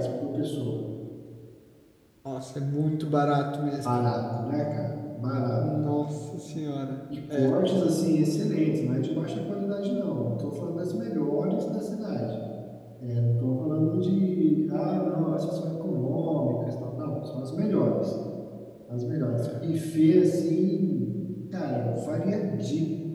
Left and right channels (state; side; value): identical; both; correlation 1.00